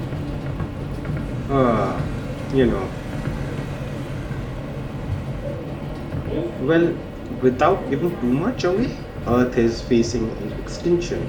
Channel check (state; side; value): identical; both; correlation 1.00